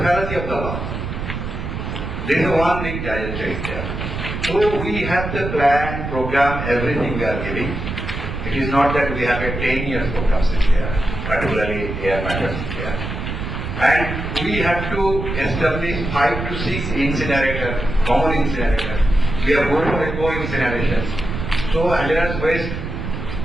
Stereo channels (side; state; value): right; noise; rumble, 5 dB below the sound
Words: fallacy of the law. There is one big giant change there. So we have the plan, program, everything we are giving. It is not that we have a 10 years program there, particularly air matters there. And we have to establish 5 to 6 incinerators, common incinerators. We are going for eco-incinerations. So hazardous waste,